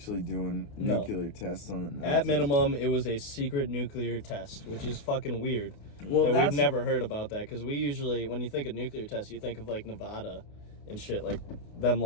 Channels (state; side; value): late; right; 28 ms